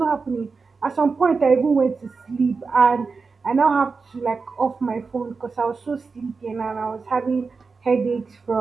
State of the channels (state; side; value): quieter; left; 4.6 dB